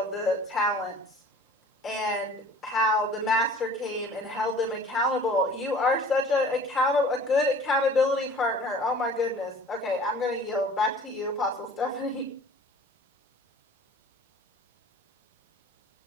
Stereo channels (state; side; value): normal; both; correlation 0.47